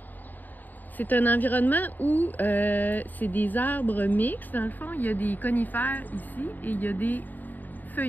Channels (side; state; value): right; late; 0.087 ms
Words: C'est un environnement où c'est des arbres mixtes. Dans le fond, il y a des conifères ici et il y a des